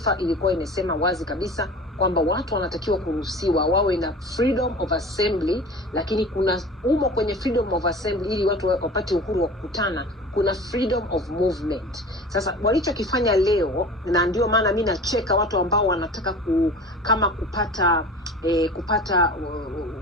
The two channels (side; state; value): both; normal; correlation 0.38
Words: ilikuwa imesema wazi kabisa kwamba watu wanatakiwa kuruhusiwa wawe na freedom of assembly, lakini kuna kwenye freedom of assembly ili watu wapate uhuru wa kukutana, kuna freedom of movement. Sasa walichokifanya leo, na ndio maana mimi nacheka watu ambao wanataka kama kupata